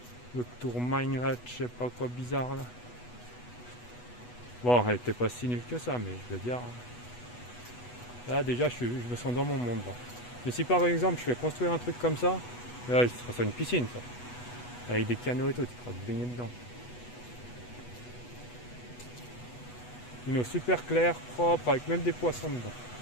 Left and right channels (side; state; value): right; late; 8.2 ms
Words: L'autre tour mine là, je sais pas quoi bizarre là. Bon, elle était pas si nulle que ça, mais je veux dire. Là déjà je me sens dans mon monde là. Mais si par exemple je fais construire un truc comme ça, là ce sera une piscine ça. Avec des canaux et tout, tu pourras te baigner dedans. Une eau super claire, propre, avec même des poissons dedans.